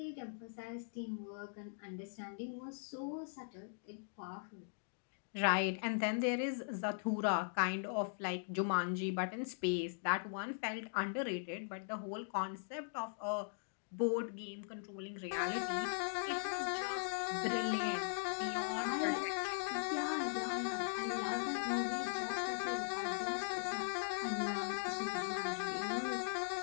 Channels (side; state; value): right; silent; digital silence